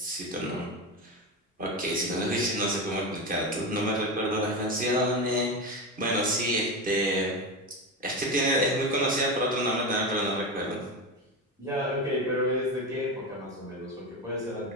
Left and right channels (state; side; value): normal; both; correlation 0.19